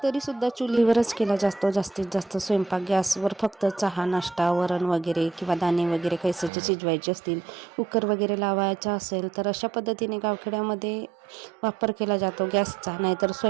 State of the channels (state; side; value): drops out; left; at 6.5 s